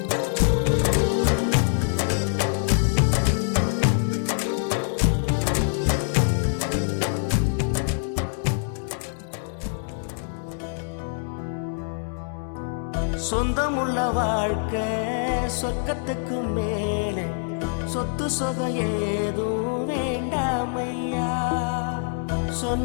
சொந்தமுள்ள வாழ்க்கை சொர்க்கத்துக்கு மேலே சொத்து சொகம் ஏதும் வேண்டாமையா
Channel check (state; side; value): silent; right; digital silence